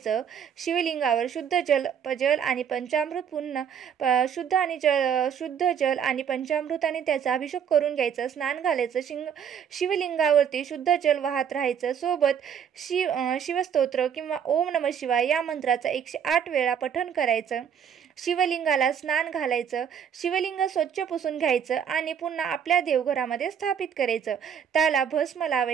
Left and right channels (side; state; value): left; quieter; 8.1 dB